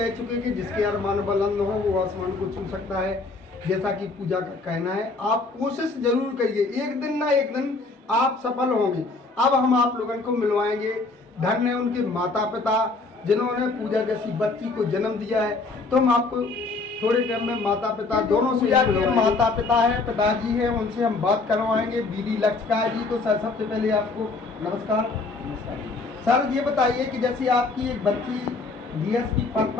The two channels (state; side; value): quieter; right; 3.7 dB